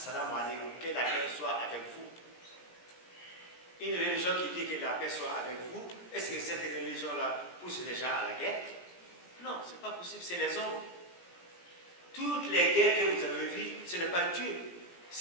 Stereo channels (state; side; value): late; right; 17 ms